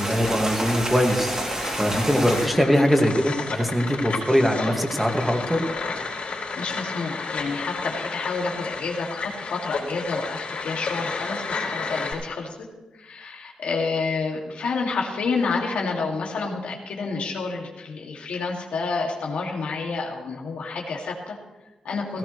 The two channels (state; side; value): normal; both; correlation 0.87